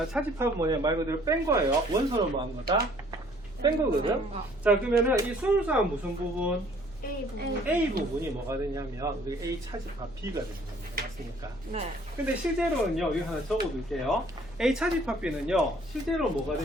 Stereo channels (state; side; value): normal; both; correlation 0.58